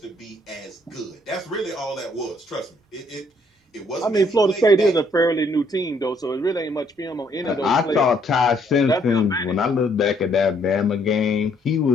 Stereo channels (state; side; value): normal; both; correlation 0.67